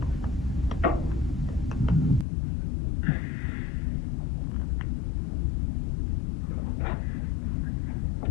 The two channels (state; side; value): drops out; right; at 2.2 s